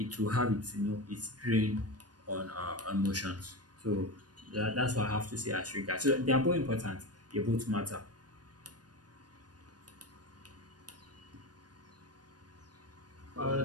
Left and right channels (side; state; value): left; late; 0.69 ms